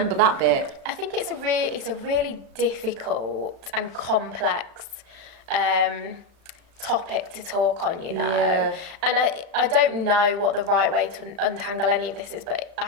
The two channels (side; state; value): left; late; 35 ms